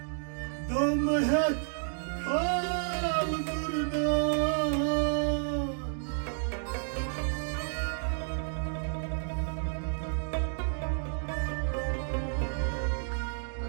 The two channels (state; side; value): silent; left; digital silence